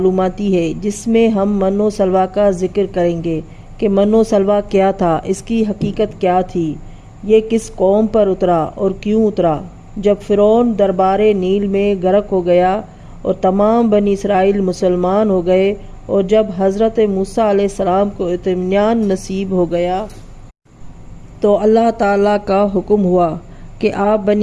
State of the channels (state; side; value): identical; both; correlation 1.00